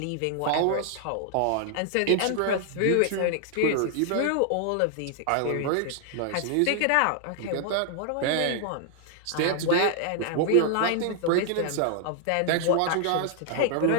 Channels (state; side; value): different; both; correlation 0.00